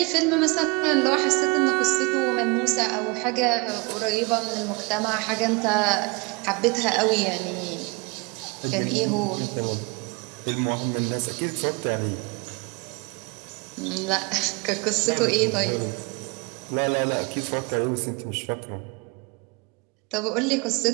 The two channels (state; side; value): quieter; left; 28.8 dB